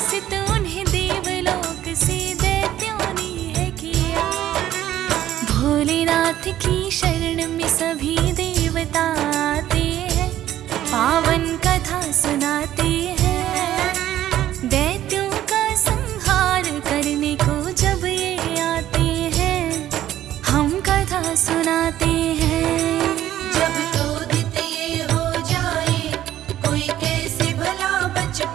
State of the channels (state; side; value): quieter; left; 12.7 dB